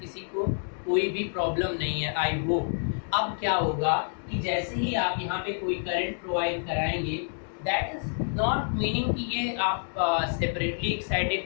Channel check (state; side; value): silent; right; digital silence